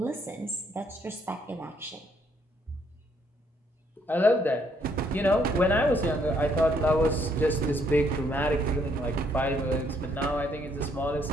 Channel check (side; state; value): both; normal; correlation 0.69